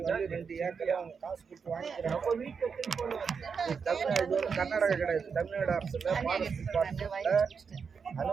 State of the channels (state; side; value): quieter; left; 5.9 dB